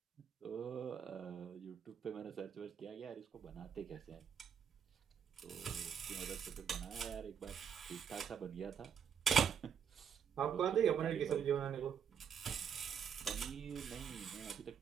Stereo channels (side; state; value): left; quieter; 7.5 dB